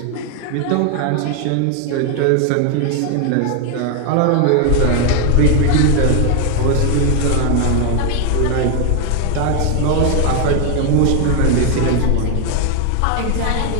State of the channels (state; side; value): different; both; correlation 0.01